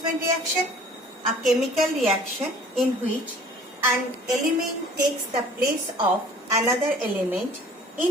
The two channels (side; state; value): both; normal; correlation 0.50